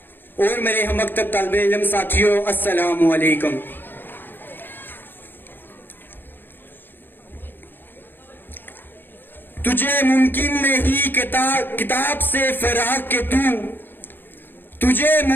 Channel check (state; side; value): late; right; 0.096 ms